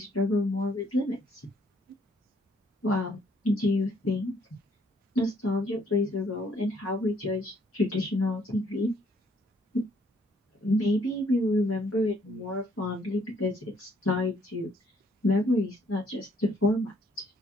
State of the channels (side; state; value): both; normal; correlation 0.66